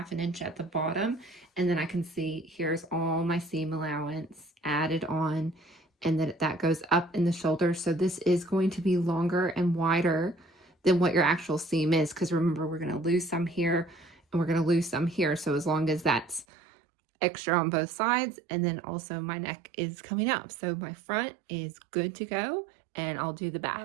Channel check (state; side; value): drops out; left; at 16.4 s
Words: inch at the bottom, and then I can see here's all my seam allowance added on, and then that goes up in the shoulder. So this is going to be longer and wider than what your actual seam is, because remember, we're going to lose some here and we're going to lose some here. So as long as that's extra on both sides, and then also my neck is coming up. So my front is good to go, and I'll do the back.